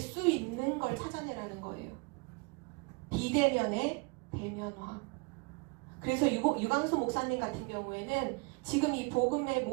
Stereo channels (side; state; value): left; quieter; 30.0 dB